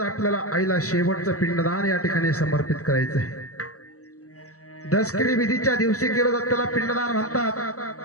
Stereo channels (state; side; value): late; right; 0.66 ms